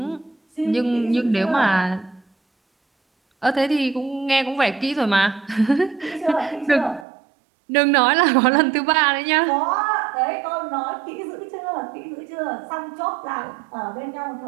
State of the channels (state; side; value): drops out; left; at 7.1 s